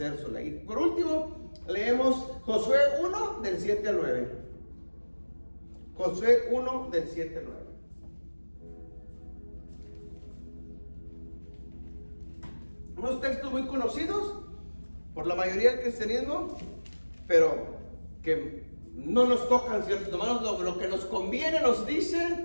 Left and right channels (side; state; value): both; inverted; correlation -1.00